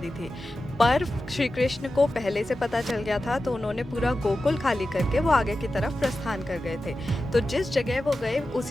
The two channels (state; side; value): normal; both; correlation 0.93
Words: थी। पर श्री कृष्ण को पहले से पता चल गया था तो उन्होंने पूरा गोकुल खाली करके वो आगे की तरफ प्रस्थान कर गए थे। तो जिस जगह वो गए